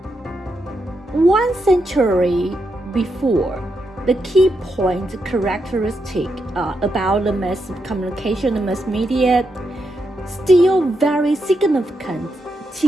1 century before, the key point characteristic about the mass communication, the mass media, still very significant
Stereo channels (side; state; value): both; normal; correlation 0.83